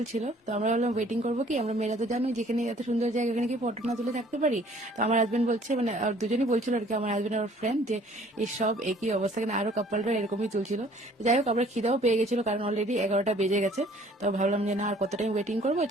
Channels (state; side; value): normal; both; correlation 0.56